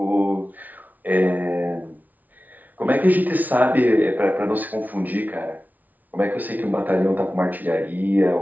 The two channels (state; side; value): late; left; 0.078 ms